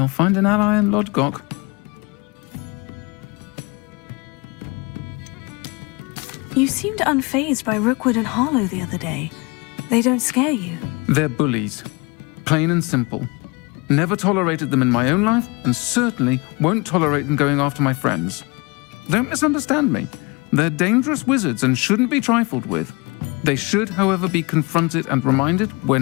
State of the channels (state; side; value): quieter; right; 27.5 dB